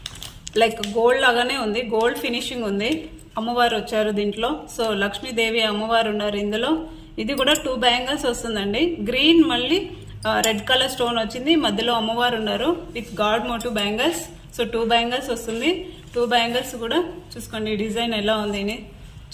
లైక్ గోల్డ్ లాగానే ఉంది. గోల్డ్ ఫినిషింగ్ ఉంది. అమ్మవారు వచ్చారు దీంట్లో. సో లక్ష్మీదేవి అమ్మవారు ఉన్నారు ఇందులో. ఇది కూడా 2 బ్యాంగిల్స్ వస్తుందండి. గ్రీన్ మళ్ళీ రెడ్ కలర్ స్టోన్ వచ్చింది. మధ్యలో అమ్మవారు ఉన్నారు with god motive bangles. So 2 bangles వస్తుంది. 2 బ్యాంగిల్స్ కూడా చూసుకోండి డిజైన్ ఎలా ఉంది.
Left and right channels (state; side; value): identical; both; correlation 1.00